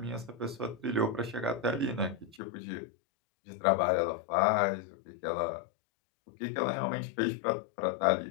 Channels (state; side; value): drops out; right; at 2.4 s